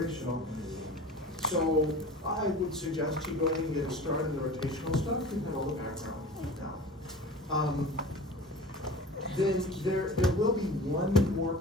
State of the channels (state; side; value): normal; both; correlation 0.37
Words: So I would suggest you go ahead and get started in the rotational stuff. You have all the background now. Then there will be one more